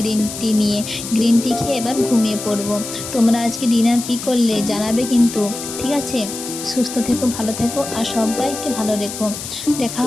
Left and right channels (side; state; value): left; noise; hiss, 9 dB below the sound